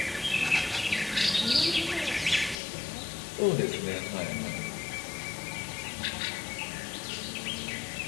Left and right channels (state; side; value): drops out; right; at 2.6 s